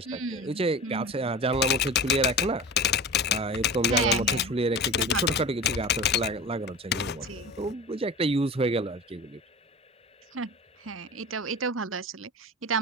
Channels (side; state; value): both; normal; correlation 0.33